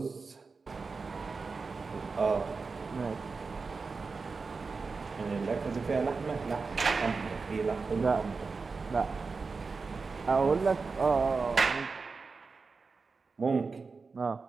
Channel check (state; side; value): quieter; left; 4.5 dB